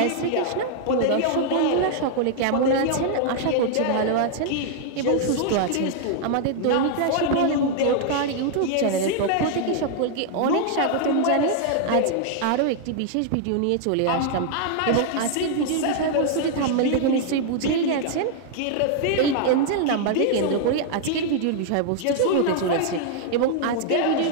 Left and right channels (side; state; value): both; different; correlation -0.01